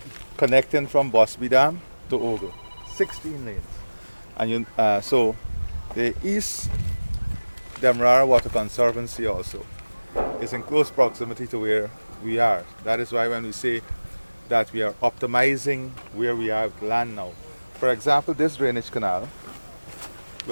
connecting from Bosby Dam to Ogle. 16 lanes. And you, so the East Demerara Water Conservancy also is in close proximity to where we are. That is why when we say that we are optimizing where we are with land now. For example, this drainage canal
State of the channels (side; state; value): both; inverted; correlation -1.00